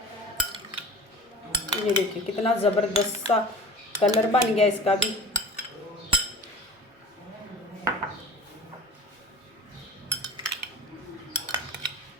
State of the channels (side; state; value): both; normal; correlation 0.40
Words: ये देखिए कितना ज़बरदस्त सा कलर बन गया इसका भी।